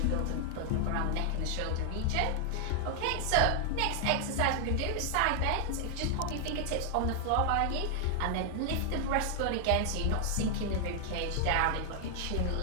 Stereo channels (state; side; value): different; both; correlation 0.00